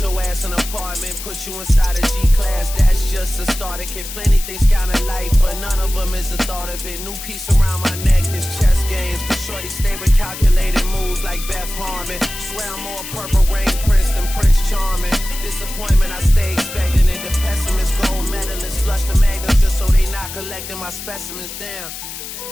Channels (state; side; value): noise; left; hiss, 10 dB below the sound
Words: ass an apartment, put you inside a G-class, that's just a starter kit. Plenty things count in life, but none of them is the thought of it. New piece around my neck is chess games, but shorty stay with calculated moves like Beth Harmon. Swear I'm more purple rain prince than Prince Charming. Disappointment I stay expecting it. The pessimist, gold medalists, flush the magnums just so they not collecting my specimens down.